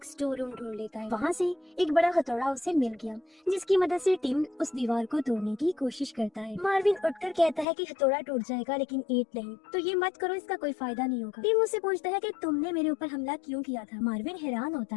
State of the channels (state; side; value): drops out; right; at 7.7 s